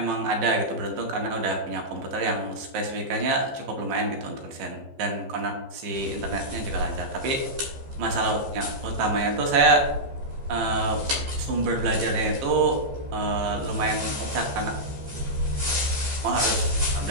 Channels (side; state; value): left; late; 14 ms